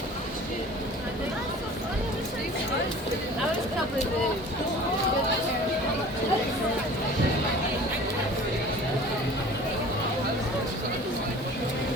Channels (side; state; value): both; normal; correlation 0.44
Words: That was probably